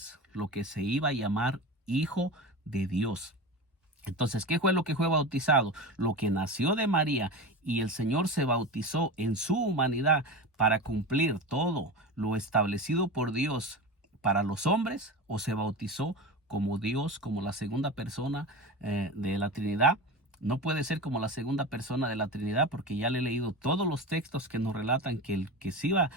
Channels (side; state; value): both; normal; correlation 0.27